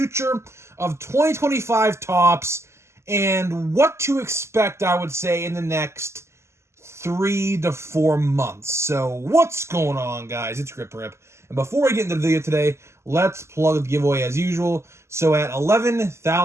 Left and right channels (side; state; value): left; late; 0.13 ms